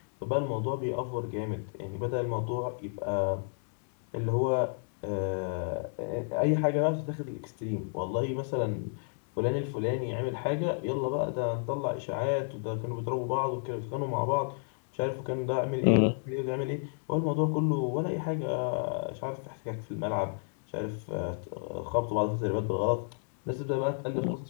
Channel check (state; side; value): silent; right; digital silence